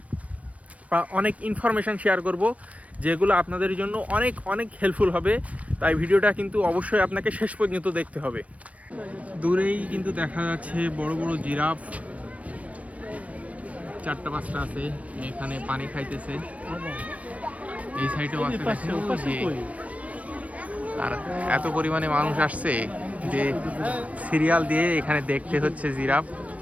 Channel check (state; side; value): late; left; 0.066 ms